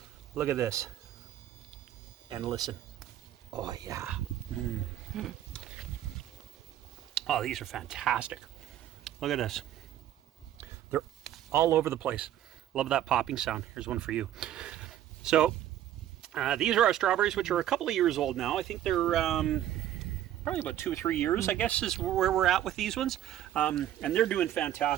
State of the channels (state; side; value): quieter; left; 11.9 dB